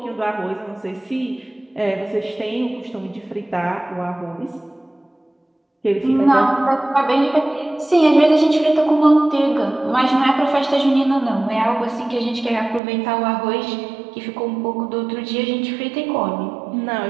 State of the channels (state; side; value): drops out; left; at 12.8 s